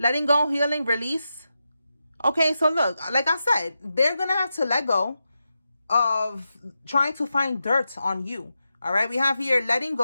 release. Okay, so look, like I said, they're going to have to let go of trying to find dirt on you. All right, we have here letting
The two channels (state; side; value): inverted; both; correlation -0.89